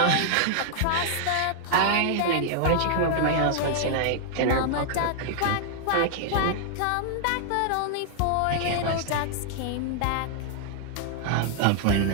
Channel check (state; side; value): different; both; correlation -0.01